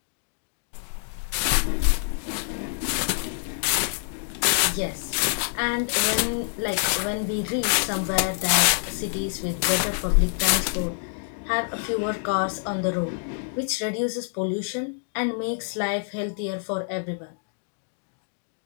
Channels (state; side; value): silent; right; digital silence